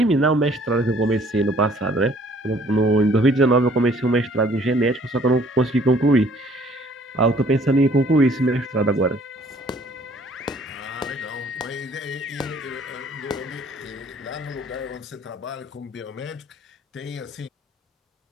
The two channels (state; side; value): normal; both; correlation 0.58